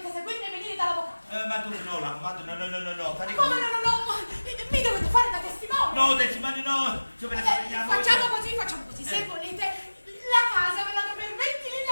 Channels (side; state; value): both; inverted; correlation -1.00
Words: seguirmi e venire dall'avvocato. Ma tu no, l'avvocato, no, fare Come no? Mi dovete fare da testimone. No, testimone no, se ve ne parliamo. Facciamo così. Se volete, la casa ve la do per 20 lire